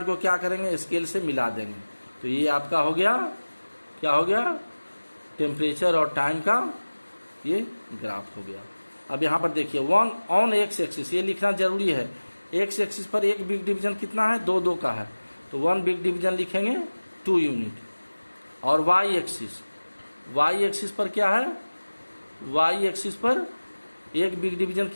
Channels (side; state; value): both; inverted; correlation -1.00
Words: को क्या करेंगे, स्केल से मिला देंगे। तो ये आपका हो गया, क्या हो गया, टेम्परेचर और टाइम का ये ग्राफ हो गया। अब यहाँ पर देखिए 1 ऑन एक्स एक्सिस, ये लिखना जरूरी है। एक्स एक्सिस पर एक बिग डिवीजन कितना है, 2 का है, तो 1 बिग डिवीजन लिखेंगे 2 यूनिट। और वाई एक्सिस पर क्या है, वाई एक्सिस पर एक बिग डिवीजन